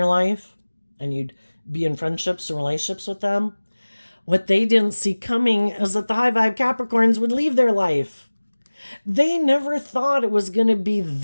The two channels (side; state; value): both; inverted; correlation -1.00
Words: life and you'd be in friendships and relationships with them. What they didn't see coming is that the high vibe Capricorns would leave their life. They never thought it was going to be